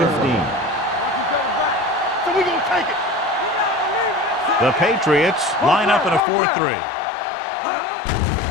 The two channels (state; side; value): drops out; right; at 6.2 s